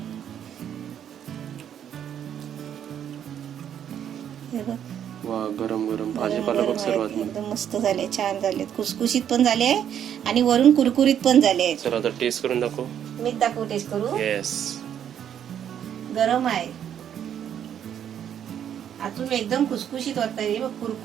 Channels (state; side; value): quieter; left; 9.4 dB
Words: हे बघ, वा, गरम गरम भाजीपाला बघ. सर्वात एकदम मस्त झाले, छान झालेत, खुसखुशीत पण झाले आणि वरून कुरकुरीत पण झाले. तर आता टेस्ट करून दाखव. मीच दाखवू, टेस्ट करू. येस, गरम आहे. आतून एकदम खुसखुशीत होत आहे,